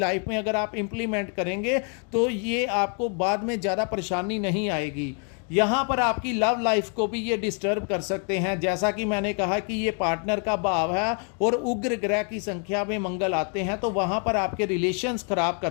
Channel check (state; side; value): quieter; right; 39.7 dB